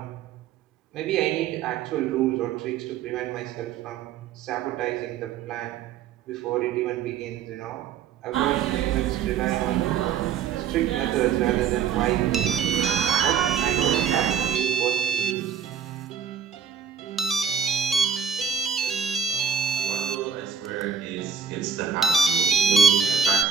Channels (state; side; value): quieter; left; 7.1 dB